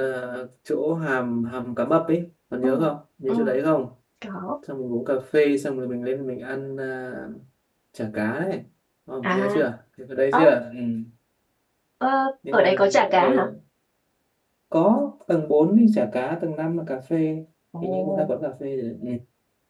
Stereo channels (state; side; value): identical; both; correlation 1.00